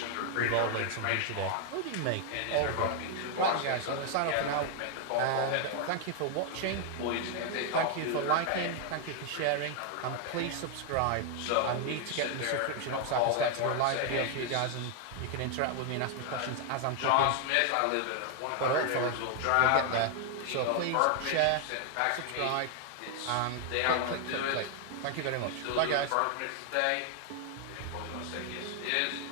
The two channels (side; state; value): both; different; correlation 0.00